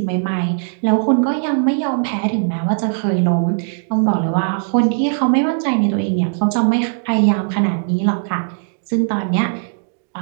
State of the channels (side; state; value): left; silent; 67 dB below the other